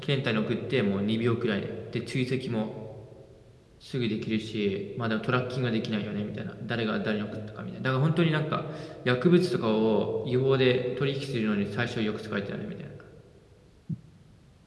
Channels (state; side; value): identical; both; correlation 1.00